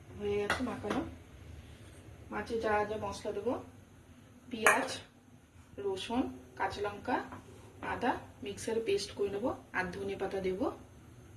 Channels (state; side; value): identical; both; correlation 1.00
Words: হয়ে গেছে মাখানো। মাছে যা যা মশলা দেবো, পেঁয়াজ, রসুন, কাঁচা লঙ্কা, আদা মিক্সারে পেস্ট করে নেবো, আর ধনে পাতা দেবো।